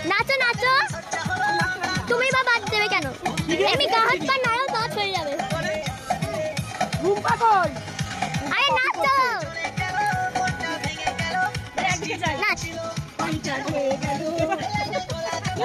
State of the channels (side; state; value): both; identical; correlation 1.00